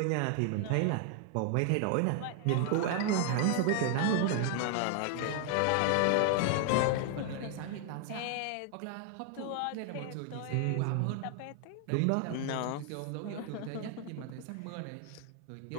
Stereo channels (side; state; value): both; different; correlation 0.00